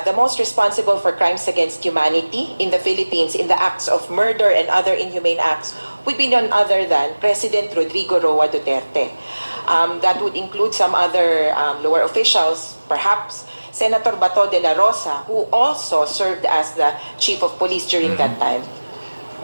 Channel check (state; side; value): inverted; both; correlation -1.00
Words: the most responsible for crimes against humanity in the Philippines in the acts of murder and other inhumane acts would be none other than President Rodrigo Roa Duterte. That would include some other lower officials, perhaps Senator Bato de la Rosa, who also served as the chief of police during that time.